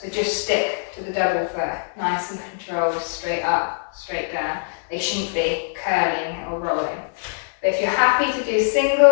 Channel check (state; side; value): silent; right; digital silence